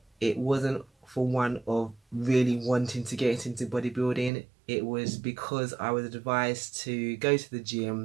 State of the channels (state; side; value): drops out; left; at 4.3 s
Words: it wasn't for one of really wanting to get into bodybuilding. It was because I was advised to go to the